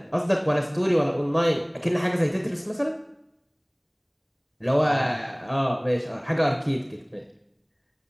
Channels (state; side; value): identical; both; correlation 1.00